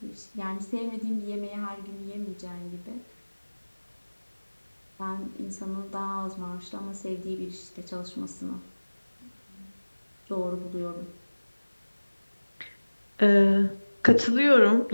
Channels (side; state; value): both; inverted; correlation -1.00